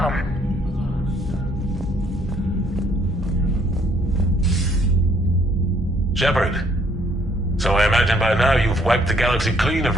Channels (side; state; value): both; normal; correlation 0.65